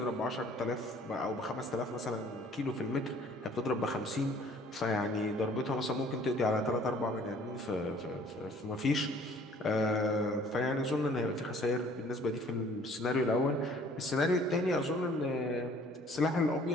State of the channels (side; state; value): both; normal; correlation 0.55